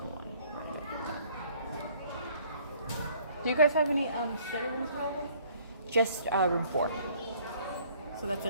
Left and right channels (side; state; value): both; inverted; correlation -0.59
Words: one. Do you guys have any study rooms available? Just room 4. So that's a